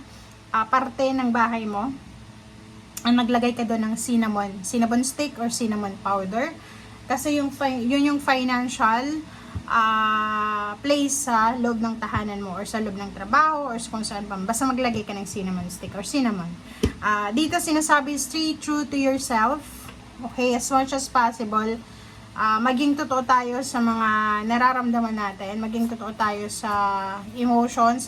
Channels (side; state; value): both; identical; correlation 1.00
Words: parte ng bahay mo. Ang naglagay ka doon ng cinnamon stick or cinnamon powder. Kasi yun yung financial place sa loob ng tahanan mo or sa loob ng trabaho or kung saan pa. Basta maglagay ka ng cinnamon stick or cinnamon. Dito sinasabi, stay true to yourself. Okay, as much as possible. Maging totoo tayo sa mga nararamdaman natin, maging totoo tayo sa emotions,